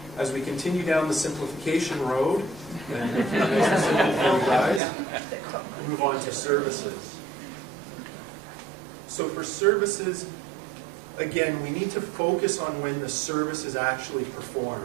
as we continue down the simplification road, and make it nice and simple for you guys, move on to services. So for services, again, we need to focus on when the service is actually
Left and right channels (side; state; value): left; drops out; at 4.8 s